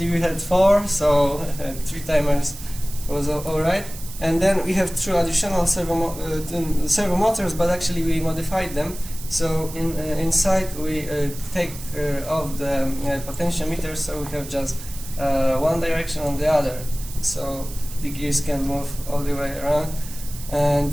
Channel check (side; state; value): right; noise; hiss, 14 dB below the sound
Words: we had 4, so 3 timers was all right. And then we have 2 additional servo motors, but actually we modified them. So inside we take off the potentiometer, so we have just one direction on the other. So the gears can move all the way around. And